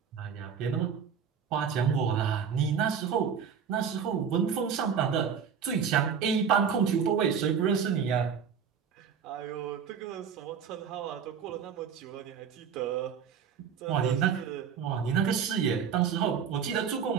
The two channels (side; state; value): left; quieter; 7.1 dB